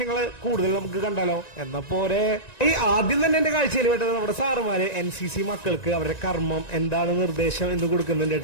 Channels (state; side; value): late; right; 1.9 ms